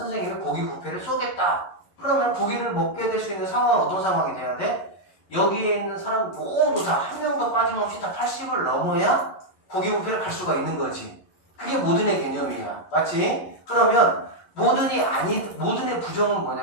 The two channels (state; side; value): late; right; 11 ms